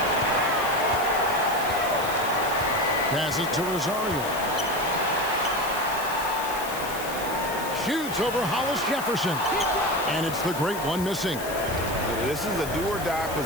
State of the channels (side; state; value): left; noise; hiss, 11 dB below the sound